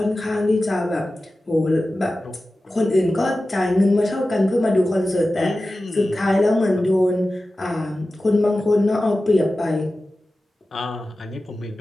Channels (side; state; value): both; normal; correlation 0.95